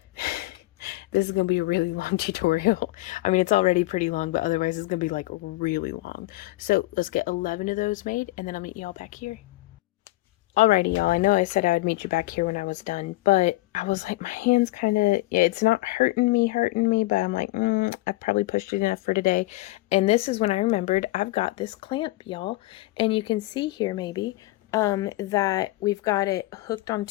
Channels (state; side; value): quieter; right; 19.4 dB